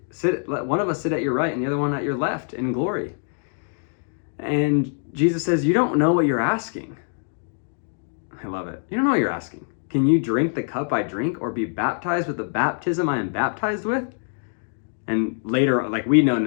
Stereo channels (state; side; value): silent; right; digital silence